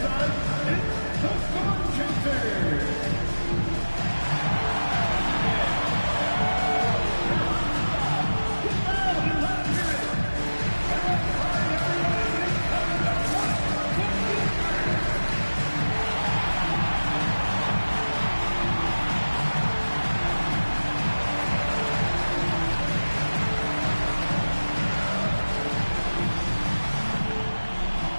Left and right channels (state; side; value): inverted; both; correlation -1.00